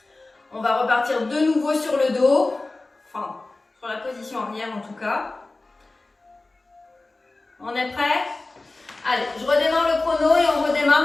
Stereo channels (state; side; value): quieter; right; 3.2 dB